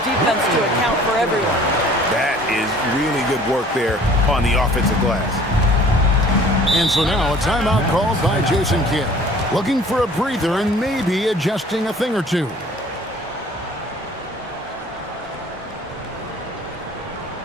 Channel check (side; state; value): both; normal; correlation 0.51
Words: defense to account for everyone. That is really good work there on the offensive glass. And so now a timeout called by Jason Kidd. Looking for a breather and maybe adjusting a thing or two. All